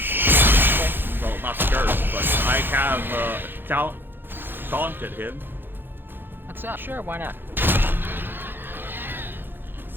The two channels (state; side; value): late; left; 0.099 ms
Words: well, not cursed, but I have taunted him. What's up? Sure, why not?